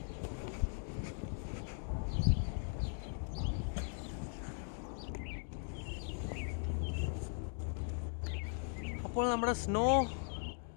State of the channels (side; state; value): right; silent; 52 dB below the other